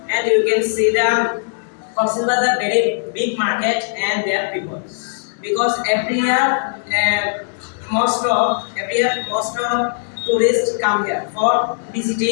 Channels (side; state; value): right; silent; digital silence